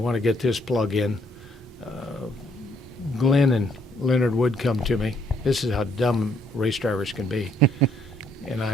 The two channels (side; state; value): both; normal; correlation 0.68